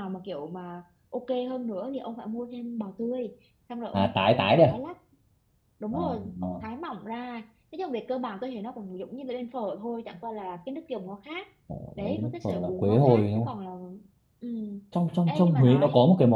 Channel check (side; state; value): both; identical; correlation 1.00